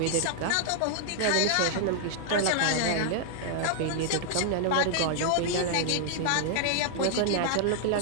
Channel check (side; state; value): both; different; correlation 0.00